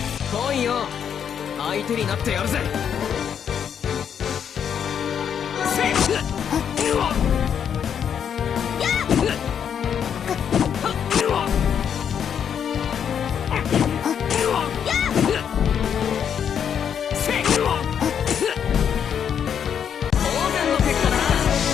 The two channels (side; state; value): right; quieter; 8.2 dB